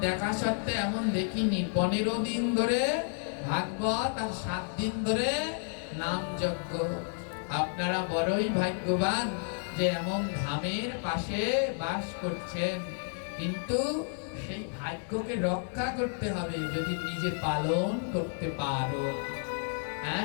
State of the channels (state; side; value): silent; right; 57 dB below the other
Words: দেখা সত্ত্বে এমন দেখিনি। 15 দিন ধরে ভাগবত আর 7 দিন ধরে নাম যজ্ঞ। আপনারা বড়ই ভাগ্যবান যে এমন ধামের পাশে বাস করছেন, কিন্তু সেই ভাগ্যকে রক্ষা করতে হবে যদি নিজে পালন করতে পারো।